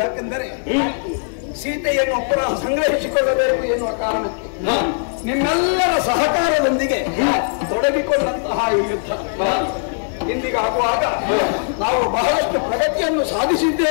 ಸೀತೆಯನ್ನು ಪುನಃ ಸಂಗ್ರಹಿಸಿಕೊಳ್ಳಬೇಕು ಎನ್ನುವ ಕಾರಣಕ್ಕೆ ನಿಮ್ಮೆಲ್ಲರ ಸಹಕಾರದೊಂದಿಗೆ ತೊಡಗಿಕೊಂಡಂತಹ ಈ ಯುದ್ಧ ಇಂದಿಗಾಗುವಾಗ ನಾವು ಬಹಳಷ್ಟು ಪ್ರಗತಿಯನ್ನು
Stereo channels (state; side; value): silent; right; 66 dB below the other